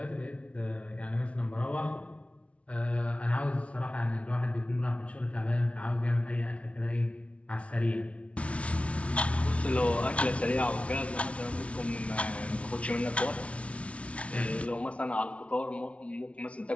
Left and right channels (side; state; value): right; late; 0.063 ms